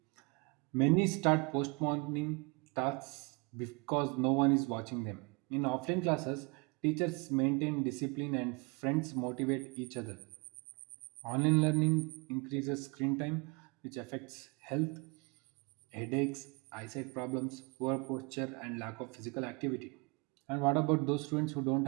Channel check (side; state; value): left; quieter; 30.4 dB